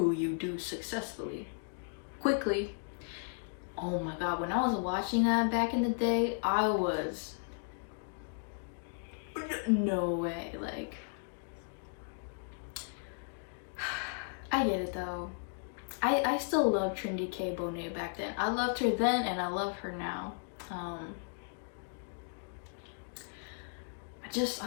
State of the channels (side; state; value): right; silent; digital silence